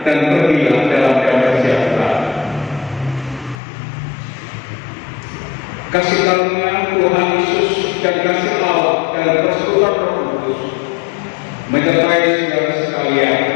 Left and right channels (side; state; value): right; drops out; at 3.6 s